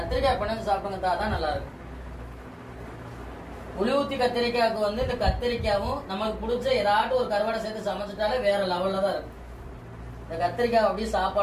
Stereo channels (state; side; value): identical; both; correlation 1.00